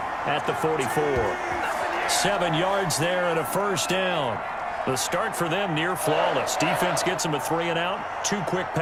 at the 44. 7 yards there and a first down. The start for them near flawless. Defense gets them a 3 and out. 2 quick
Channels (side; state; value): both; identical; correlation 1.00